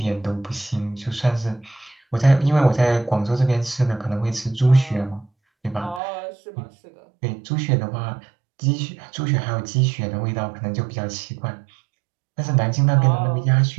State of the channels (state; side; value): drops out; left; at 6.0 s